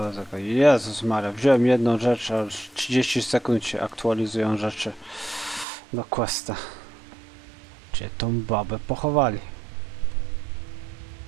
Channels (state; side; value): drops out; left; at 5.7 s